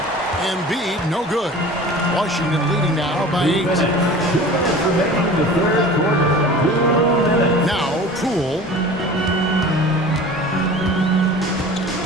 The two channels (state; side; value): normal; both; correlation 0.40